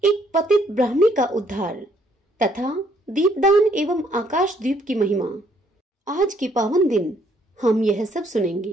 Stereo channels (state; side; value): normal; both; correlation 0.67